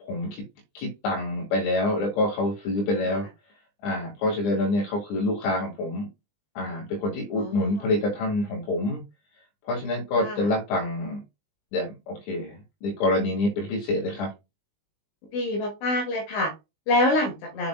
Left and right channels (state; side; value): late; right; 20 ms